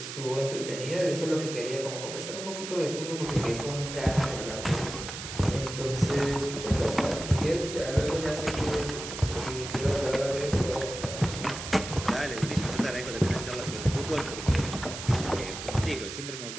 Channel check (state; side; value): noise; right; hiss, 8 dB below the sound